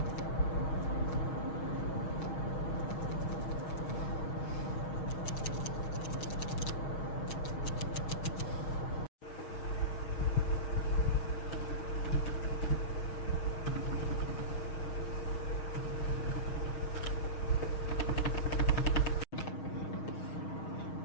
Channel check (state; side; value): late; right; 6.4 ms